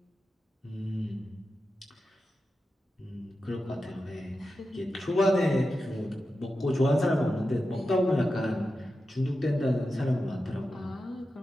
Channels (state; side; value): normal; both; correlation 0.91